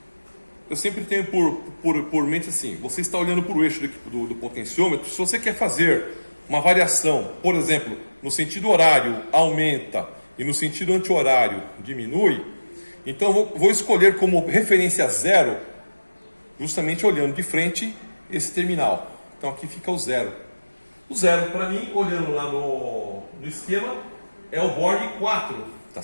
Eu sempre tenho por mente assim: você está olhando para o eixo do potenciômetro. Se você quer fazer uma variação, por exemplo, no sentido horário aumenta e no sentido anti-horário diminui, então eu vou escolher como referência 0, justamente olhando de frente esse terminal. Então aqui fica o 0. O 0 para mim, olhando lá no esquema, é o Borne 4, tá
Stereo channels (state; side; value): inverted; both; correlation -1.00